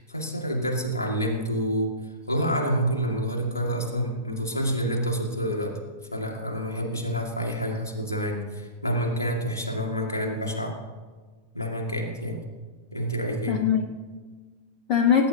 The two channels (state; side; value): inverted; both; correlation -0.31